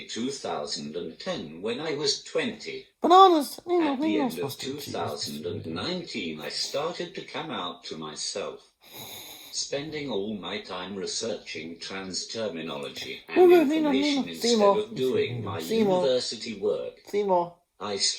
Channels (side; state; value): both; identical; correlation 1.00